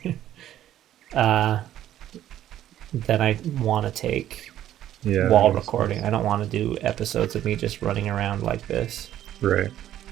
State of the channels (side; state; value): left; quieter; 12.1 dB